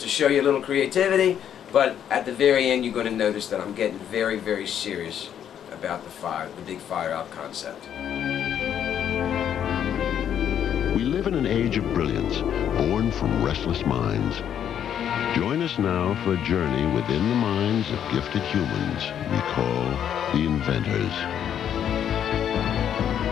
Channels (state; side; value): quieter; right; 9.4 dB